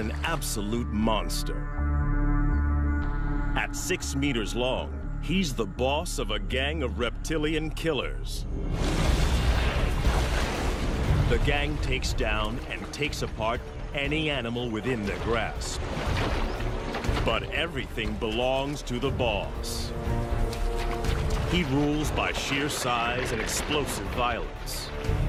absolute monster. At 6 meters long, he's the boss of a gang of reptilian killers. The gang takes down and takes apart any animal within their grasp. But everything belongs to the boss. He rules by sheer size and explosive violence.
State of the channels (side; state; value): both; identical; correlation 1.00